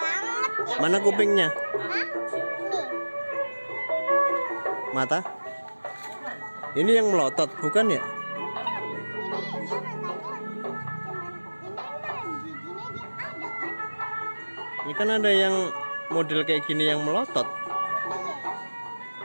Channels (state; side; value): inverted; both; correlation -1.00